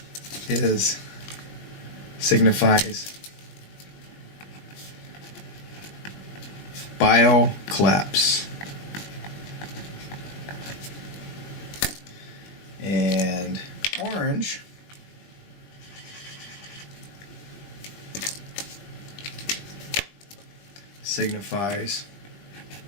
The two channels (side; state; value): right; late; 20 ms